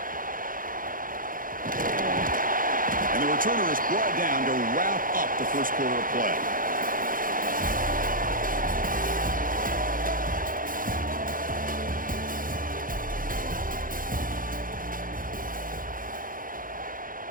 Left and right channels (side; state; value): left; late; 0.40 ms